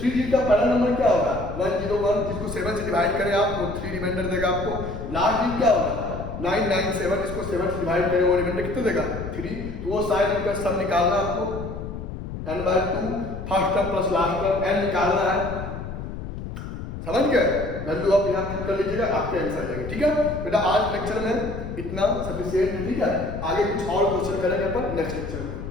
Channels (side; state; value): left; noise; rumble, 8 dB below the sound